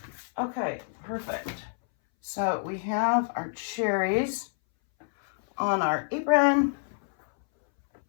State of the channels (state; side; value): silent; right; 60 dB below the other